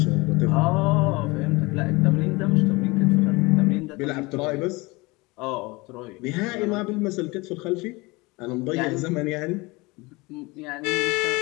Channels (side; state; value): right; quieter; 24.2 dB